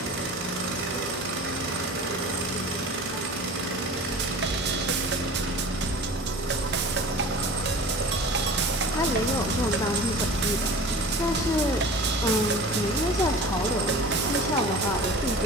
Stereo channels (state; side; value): normal; both; correlation 0.39